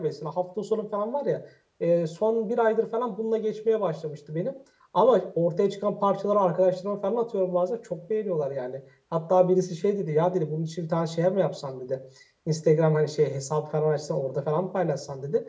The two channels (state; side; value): identical; both; correlation 1.00